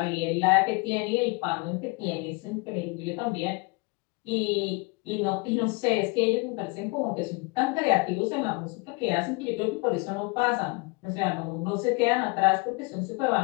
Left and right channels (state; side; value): quieter; right; 28.8 dB